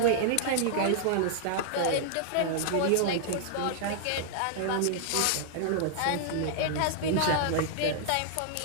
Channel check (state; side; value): different; both; correlation -0.01